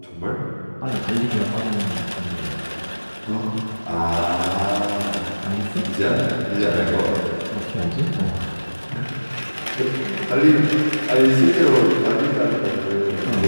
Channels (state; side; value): inverted; both; correlation -1.00